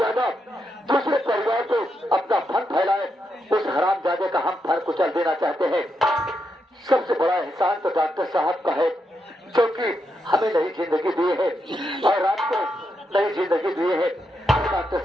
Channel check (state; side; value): normal; both; correlation 0.82